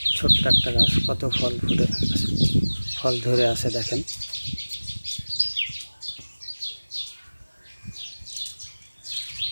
ছোট্ট একটা গাছ কত ফল ফুটে আছে, ফল ধরে আছে। দেখেন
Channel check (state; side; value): inverted; both; correlation -1.00